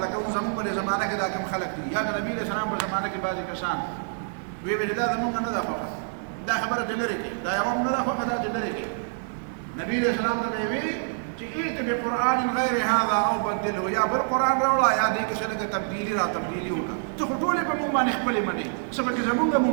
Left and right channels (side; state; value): left; silent; digital silence